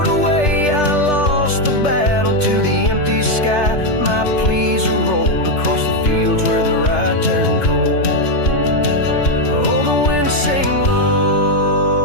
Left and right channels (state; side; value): late; right; 3.3 ms